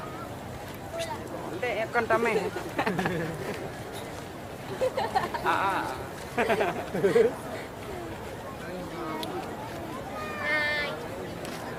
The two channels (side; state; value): both; identical; correlation 1.00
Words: Ndek kan tame.